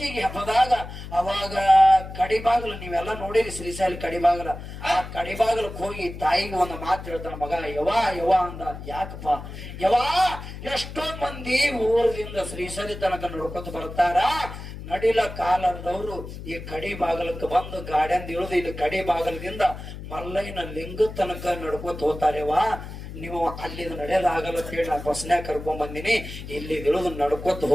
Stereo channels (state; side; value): noise; left; hum, 11 dB below the sound